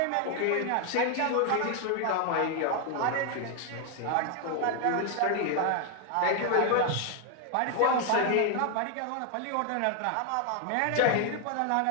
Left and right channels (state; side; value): different; both; correlation 0.00